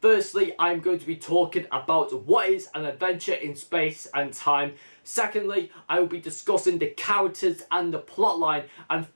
I'm going to be talking about what is an adventure in space and time. Secondly, I will be discussing the characters and the plotline. And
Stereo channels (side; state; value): both; inverted; correlation -1.00